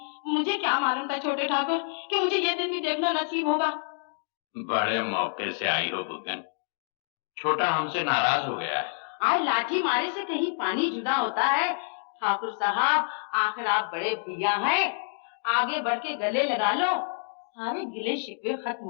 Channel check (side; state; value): right; silent; digital silence